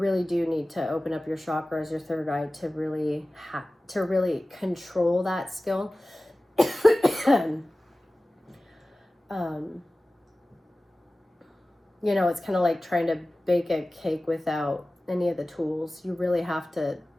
do need to open up your chakras, your third eye, to really control that skill. You know, it's kind of like trying to bake a cake without any of the tools. You really have to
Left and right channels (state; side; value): normal; both; correlation 0.97